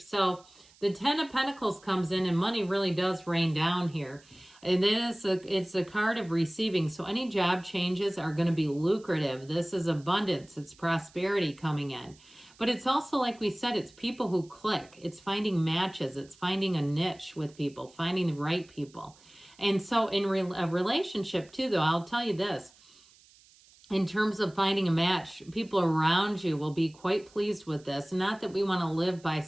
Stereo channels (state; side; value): noise; right; hiss, 27 dB below the sound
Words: the Ten of Pentacles comes in and money really does rain down here. And it's a card of receiving. So any job changes are going to be lucrative. This is abundance. It's prosperity coming in. But it's also, like we said, it's people who click. It's finding matches. It's finding a niche with people, finding the right people. And so in a relationship too, though, I'll tell you this. In terms of finding a match, people around you will be quite pleased with this. Not that we want to live by